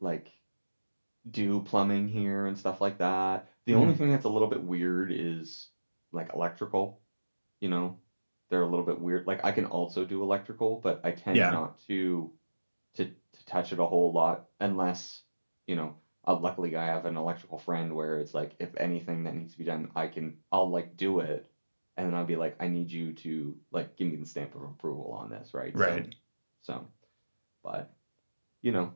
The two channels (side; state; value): both; inverted; correlation -1.00